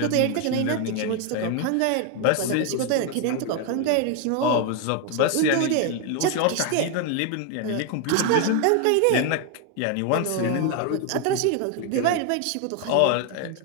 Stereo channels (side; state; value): both; different; correlation 0.01